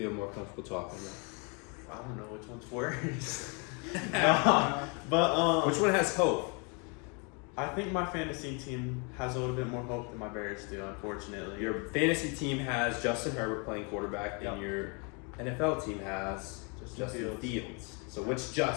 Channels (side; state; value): right; quieter; 34.0 dB